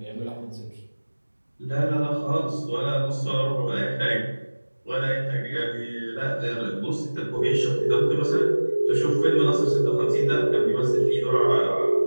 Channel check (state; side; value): inverted; both; correlation -1.00